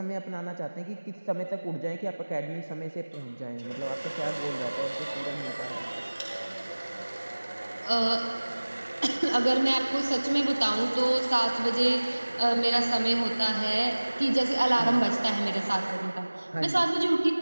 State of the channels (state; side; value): inverted; both; correlation -1.00